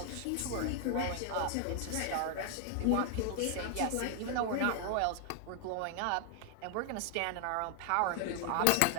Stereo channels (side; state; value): both; different; correlation 0.00